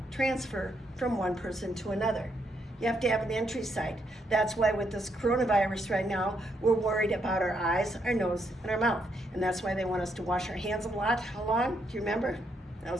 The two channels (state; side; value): normal; both; correlation 0.77